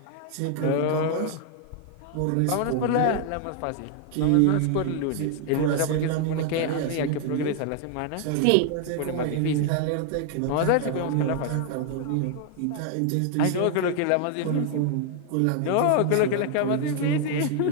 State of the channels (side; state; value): both; different; correlation 0.00